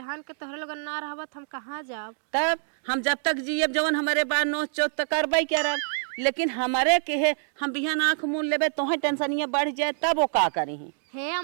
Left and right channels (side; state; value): left; silent; digital silence